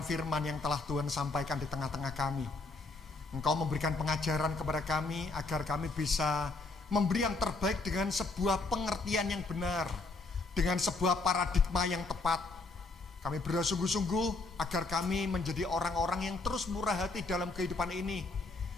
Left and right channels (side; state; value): right; quieter; 3.5 dB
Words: yang telah Tuhan sampaikan di tengah-tengah kami. Engkau memberikan pengajaran kepada kami agar kami bisa memberi yang terbaik dengan sebuah pengertian yang benar, dengan sebuah paradigma yang tepat. Kami berdoa sungguh-sungguh agar kami menjadi orang-orang yang terus murah hati dalam kehidupan ini.